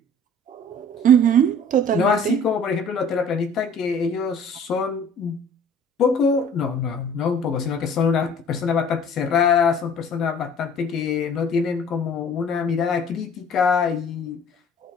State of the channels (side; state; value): both; normal; correlation 0.49